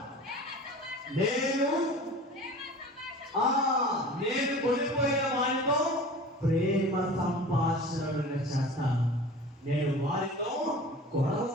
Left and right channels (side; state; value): both; normal; correlation 0.39